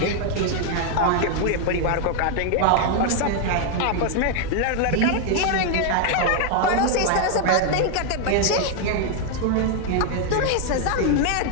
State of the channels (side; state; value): both; different; correlation 0.00